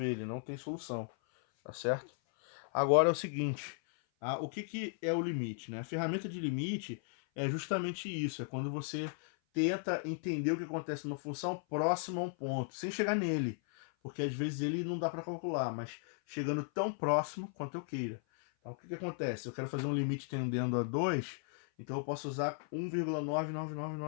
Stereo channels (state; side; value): silent; right; 54 dB below the other